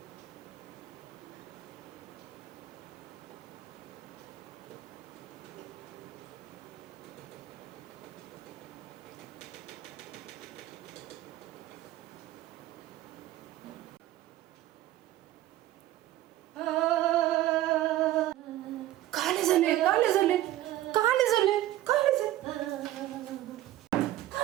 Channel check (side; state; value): left; quieter; 14.6 dB